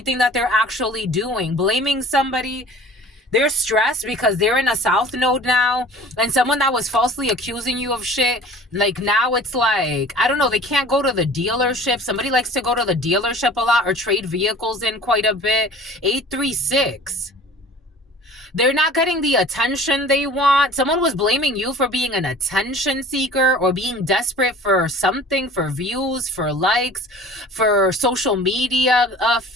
that they're actually doing. Blaming somebody. They're stressed because they're in a south node now. And someone that was falsely accusing you of shit, like now it's like, I don't know, they can't go to the dealership. Somebody likes to go to the dealership a lot or trade vehicles in quite a bit. 836. They're not getting the attention they want. Someone was blaming you for being an attention seeker or being desperate for something, for views, for likes, for social media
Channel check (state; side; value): normal; both; correlation 0.45